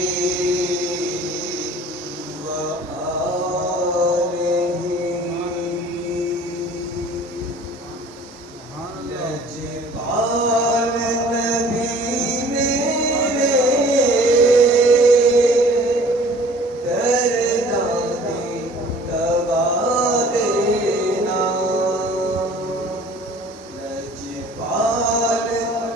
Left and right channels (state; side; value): normal; both; correlation 0.50